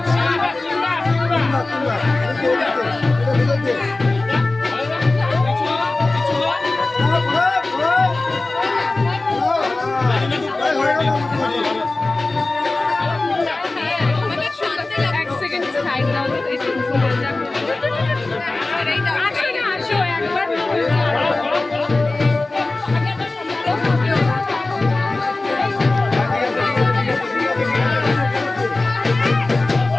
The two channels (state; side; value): quieter; right; 3.2 dB